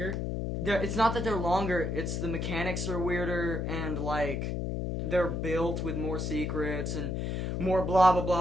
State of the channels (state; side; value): noise; left; hum, 1 dB below the sound